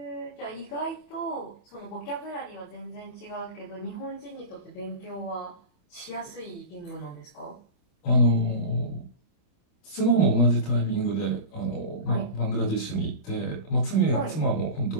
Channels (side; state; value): right; late; 29 ms